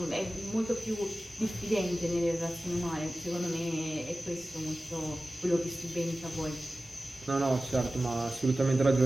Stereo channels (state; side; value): normal; both; correlation 0.95